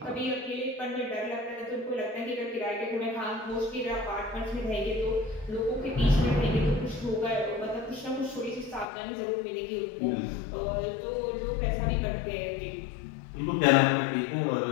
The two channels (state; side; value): drops out; right; at 8.8 s